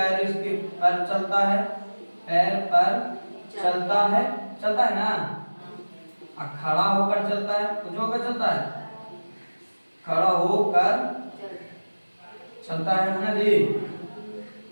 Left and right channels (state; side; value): inverted; both; correlation -1.00